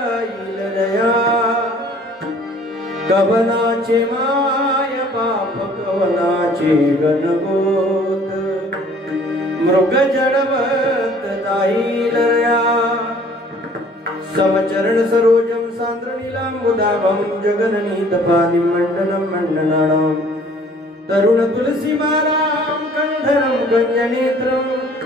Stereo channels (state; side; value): normal; both; correlation 0.54